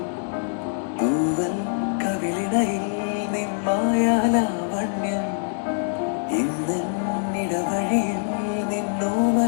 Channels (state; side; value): silent; right; digital silence